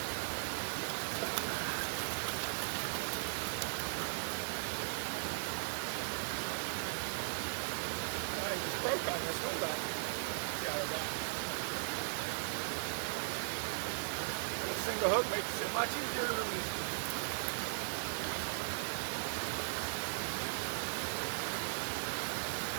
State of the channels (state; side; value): silent; left; digital silence